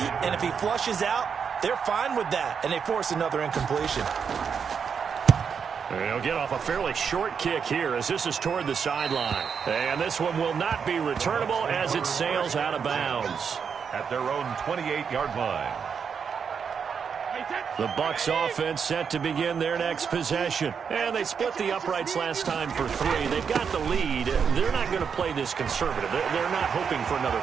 and if he flushes out, they're fine with that, and they force another incompletion. He'll get off a fairly short kick here as this is toward the sideline. And this one will not be returnable as it sails out of bounds. At their own 28-yard line. The Bucs offense set to begin their next possession. And they split the uprights last time for 3. They've got the lead. They're not going to play this conservative. They're not hoping for another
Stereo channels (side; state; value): left; quieter; 6.6 dB